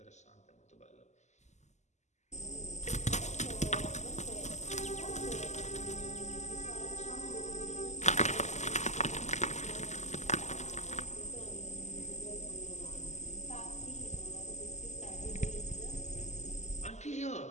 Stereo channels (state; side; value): late; right; 0.33 ms